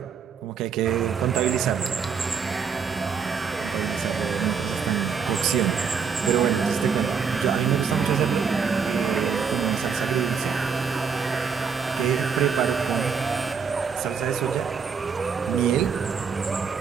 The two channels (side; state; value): left; quieter; 6.2 dB